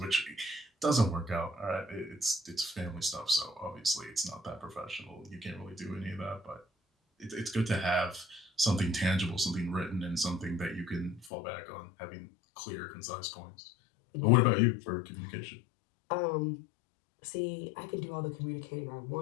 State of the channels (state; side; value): drops out; right; at 11.3 s